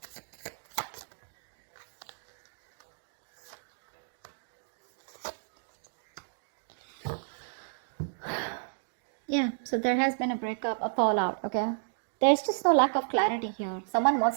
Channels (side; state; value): left; silent; digital silence